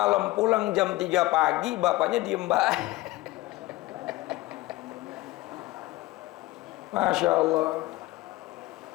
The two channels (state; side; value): quieter; right; 19.0 dB